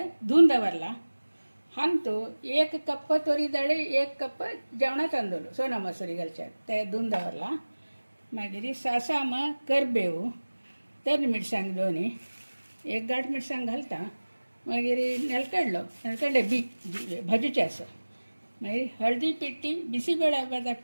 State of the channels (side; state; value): both; inverted; correlation -1.00